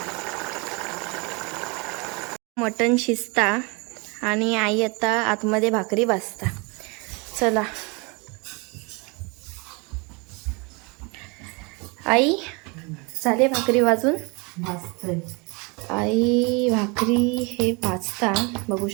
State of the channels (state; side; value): quieter; left; 29.8 dB